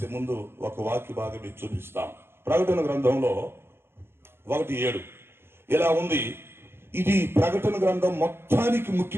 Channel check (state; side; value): late; left; 0.11 ms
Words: ముందు ఒక వాక్య భాగం మీకు చూపిస్తాం. ప్రకటన గ్రంథంలో 1:7 ఇలా ఉంది. ఇది ప్రకటన గ్రంథం మొత్తానికి